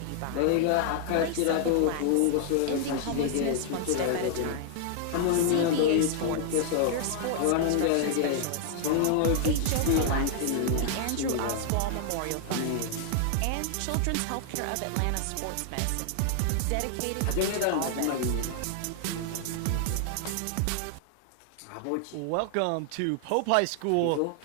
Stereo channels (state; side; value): different; both; correlation 0.00